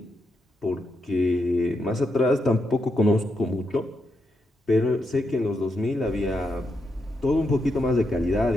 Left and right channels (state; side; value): normal; both; correlation 0.83